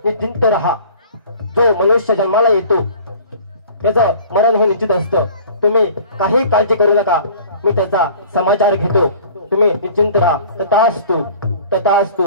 निश्चिंत राहा. जो मनुष्य जन्माला येतो त्याचं मरण हे निश्चित असतं. तुम्ही काही काळजी करू नका, मी त्याचा समाचार घेतो. तुम्ही निश्चिंत राहा. तथास्तु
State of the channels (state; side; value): inverted; both; correlation -0.48